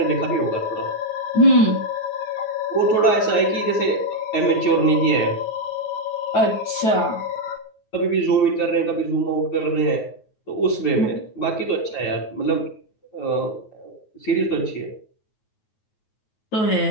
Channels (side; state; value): right; late; 9.4 ms